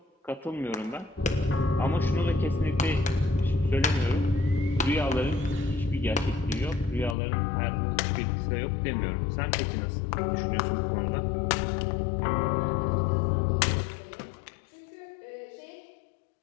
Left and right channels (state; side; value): drops out; right; at 7.2 s